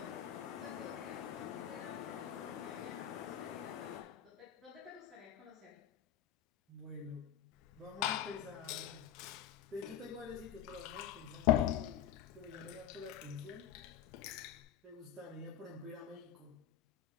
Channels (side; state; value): right; quieter; 10.8 dB